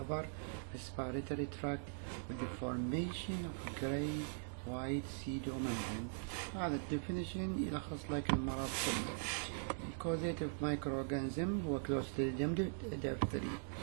respiratory tract with the formation of grey white pseudomembrane. هذا الديفينيشن يلخص لك المرض كله. Causative microorganism هو Clostridium diphtheria.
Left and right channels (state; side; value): silent; left; digital silence